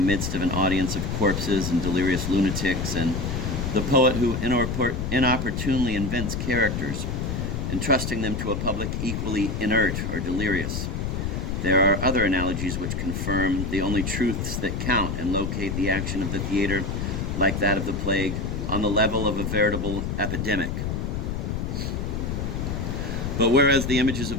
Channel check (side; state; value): left; noise; rumble, 2 dB below the sound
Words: of an audience of corpses and delirious lunatics, and the poet who inopportunely invents characters, entrusting them to a public equally inert or delirious. There are other analogies which confirm the only truths that count and locate the action of the theater, like that of the plague, on the level of a veritable epidemic. But whereas the images